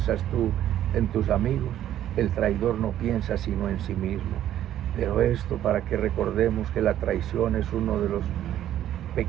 tú en tus amigos? El traidor no piensa sino en sí mismo. Pero esto para que recordemos que la traición es uno de los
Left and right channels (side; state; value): left; quieter; 11.8 dB